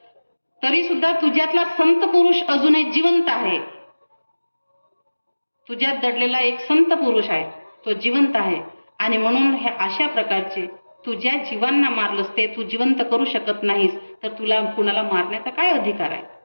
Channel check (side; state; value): both; inverted; correlation -1.00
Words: तरी सुद्धा तुझ्यातला संत पुरुष अजूनही जिवंत आहे. तुझ्यात दडलेला एक संत पुरुष आहे, तो जिवंत आहे. आणि म्हणून हे अशा प्रकारचे तू ज्या जीवांना मारलंस ते तू जिवंत करू शकत नाहीस, तर तुला कुणाला मारण्याचा काय अधिकार आहे.